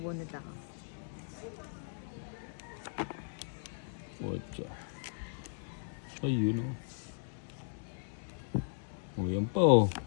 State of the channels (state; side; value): silent; right; digital silence